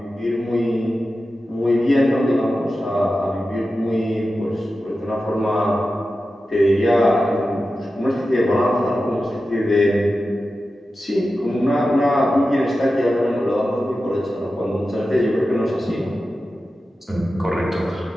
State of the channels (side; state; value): both; normal; correlation 0.93